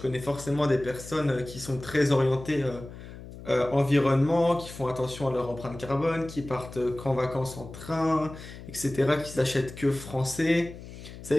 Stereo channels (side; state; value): left; noise; hum, 14 dB below the sound